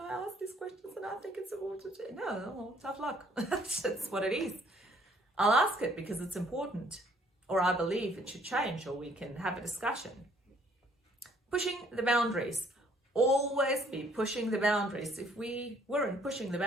ask these questions, and I think it's important. No, tough luck. That's what it is. I'll ask it because it's important, or I believe it should change, or we can have a discussion. Pushing the boundaries. Always be pushing the boundaries. If we weren't pushing the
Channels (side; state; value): both; normal; correlation 0.63